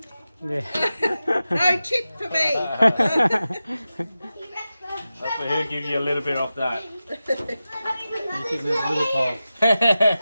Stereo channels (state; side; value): inverted; both; correlation -0.93